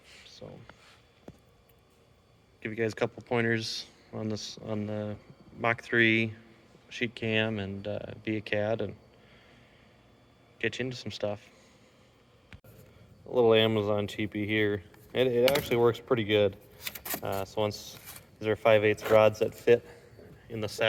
So give you guys a couple pointers on this on the Mach 3 sheet cam and via CAD and get you into some stuff. A little Amazon cheapie here. It actually works pretty good. So once these are 5/8 rods that fit in the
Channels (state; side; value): identical; both; correlation 1.00